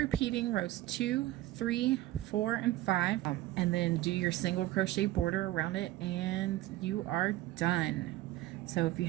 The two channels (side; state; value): left; quieter; 16.0 dB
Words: rows 2, 3, 4, and 5, and then do your single crochet border around it, and you are done. So if you